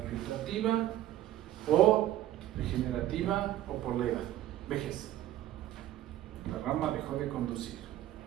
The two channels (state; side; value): quieter; left; 13.3 dB